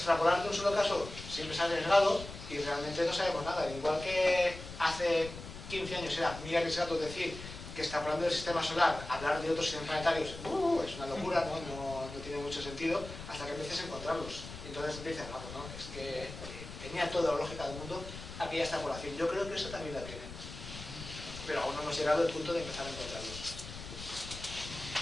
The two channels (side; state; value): left; noise; rumble, 12 dB below the sound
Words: de un solo caso siempre se ha arriesgado y realmente no sabemos nada. Igual que hace 15 años era muy arriesgado decir que extrapolando del sistema solar, hablar de otros sistemas planetarios, es una locura, no tiene mucho sentido, hasta que empieces a encontrarlos. Y entonces dices, no, es que tenía toda la lógica del mundo aquella extrapolación. Yo creo que eso también la tiene. Pero aún no hemos llegado al punto de empezar a encontrarlos.